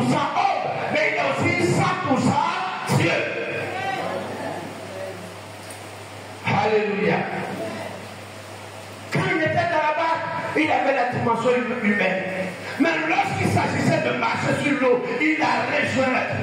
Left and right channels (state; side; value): identical; both; correlation 1.00